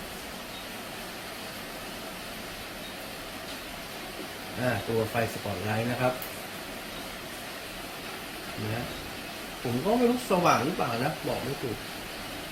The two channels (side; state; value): both; identical; correlation 1.00